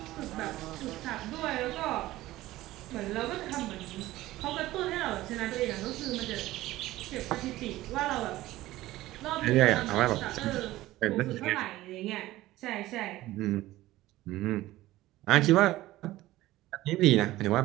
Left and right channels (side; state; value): left; quieter; 16.6 dB